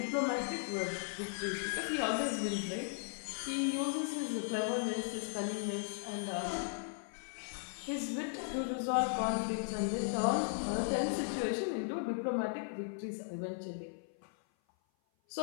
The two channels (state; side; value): silent; right; 53 dB below the other